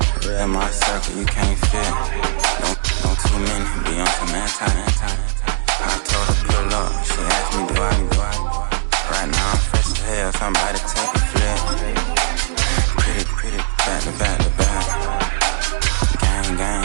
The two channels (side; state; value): left; silent; digital silence